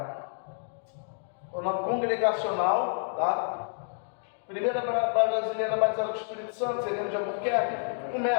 congregacional, tá? Primeira brasileira batizada com o Espírito Santo, Sereno de Albuquerque,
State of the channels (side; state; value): right; silent; digital silence